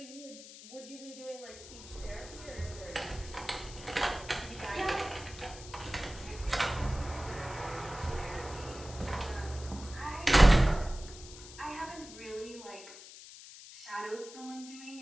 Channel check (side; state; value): left; noise; hiss, 15 dB below the sound